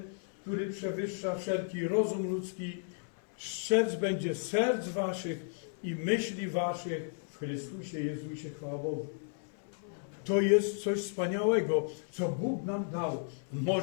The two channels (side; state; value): right; silent; 55 dB below the other